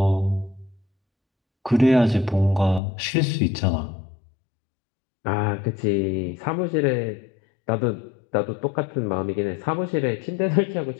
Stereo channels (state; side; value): drops out; right; at 2.8 s